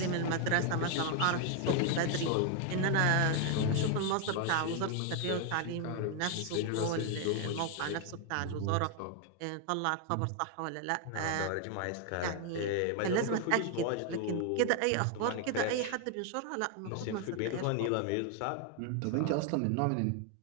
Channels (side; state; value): both; different; correlation 0.00